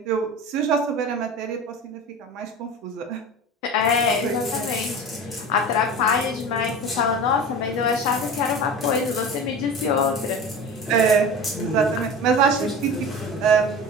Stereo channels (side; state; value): both; normal; correlation 0.33